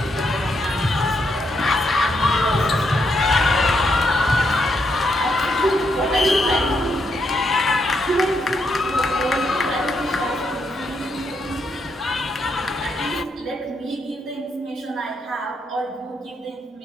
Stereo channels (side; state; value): both; normal; correlation 0.78